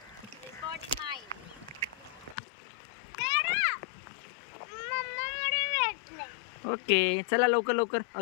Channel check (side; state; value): right; drops out; at 2.4 s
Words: Okay, चला लवकर लवकर,